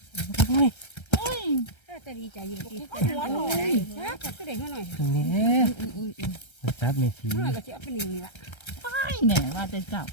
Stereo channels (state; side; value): late; right; 1.3 ms